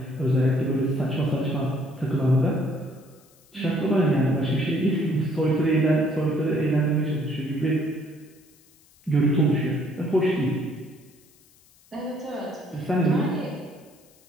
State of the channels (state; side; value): noise; left; hiss, 30 dB below the sound